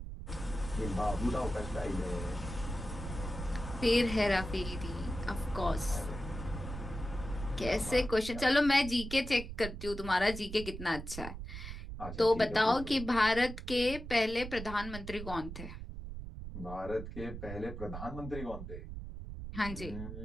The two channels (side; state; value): right; noise; rumble, 8 dB below the sound